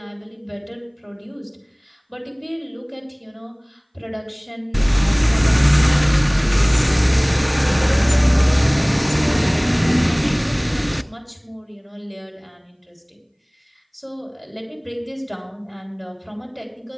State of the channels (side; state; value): both; identical; correlation 1.00